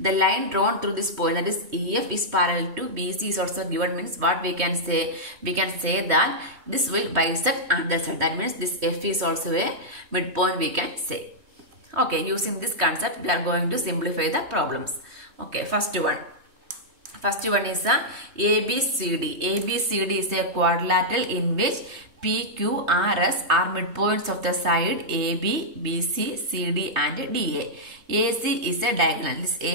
line drawn through this point, that is EF, is parallel to BC is also given. Means what we can say? We can say that this will bisect other side. That means this F is also a midpoint we can say. Okay, using this concept we are going to simplify the problems. Okay, first one is a ABCD. ABCD is a quadrilateral in which PQRS are midpoints of the side AB, BC, CD and DA. AC is a diagonal. This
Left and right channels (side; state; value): left; late; 3.2 ms